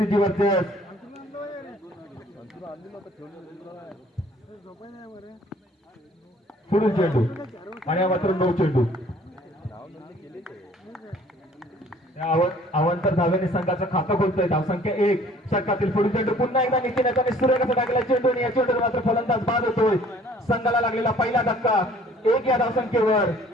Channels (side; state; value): both; normal; correlation 0.55